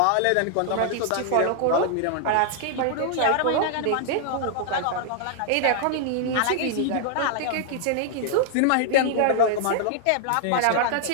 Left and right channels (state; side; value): different; both; correlation -0.01